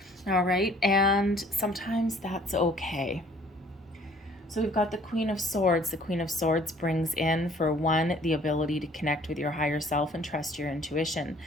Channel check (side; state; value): both; normal; correlation 0.56